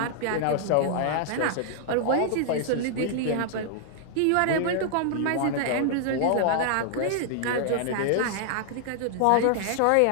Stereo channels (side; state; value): both; different; correlation -0.01